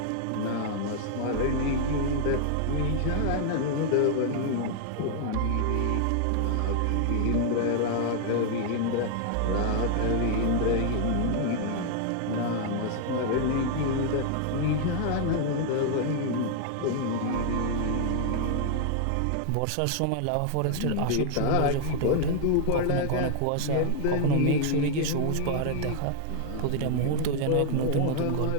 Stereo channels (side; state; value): both; different; correlation 0.00